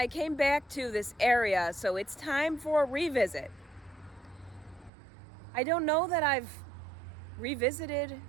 came back to this area, so it's time for a revisit. I don't know that I've revisited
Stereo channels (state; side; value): drops out; left; at 4.9 s